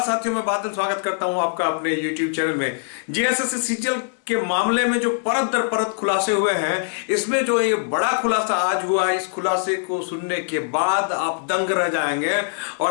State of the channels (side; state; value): right; silent; digital silence